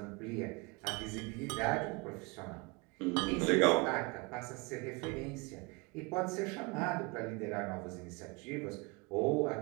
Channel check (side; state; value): left; quieter; 27.6 dB